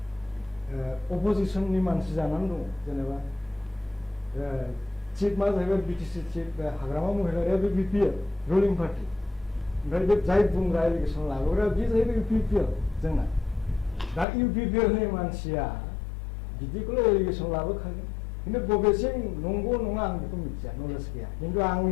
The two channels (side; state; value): right; drops out; at 14.2 s